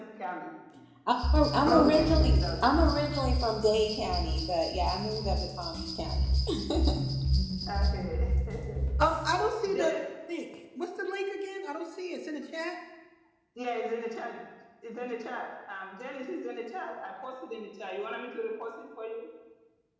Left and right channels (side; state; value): both; identical; correlation 1.00